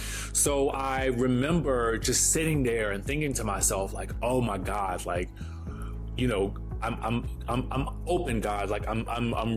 So I remember just sitting there and thinking to myself, like, oh my God, like, I'm open, God. Like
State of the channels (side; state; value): both; identical; correlation 1.00